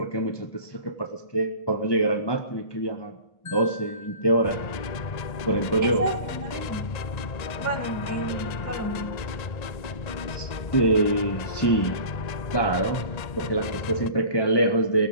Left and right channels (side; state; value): right; late; 1.8 ms